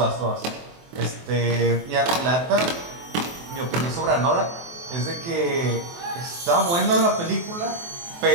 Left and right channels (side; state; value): left; late; 23 ms